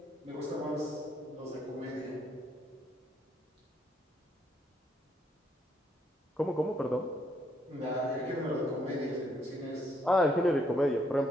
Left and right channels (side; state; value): both; normal; correlation 0.72